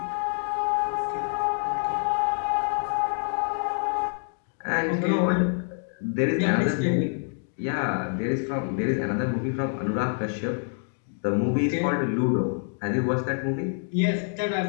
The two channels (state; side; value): silent; right; 60 dB below the other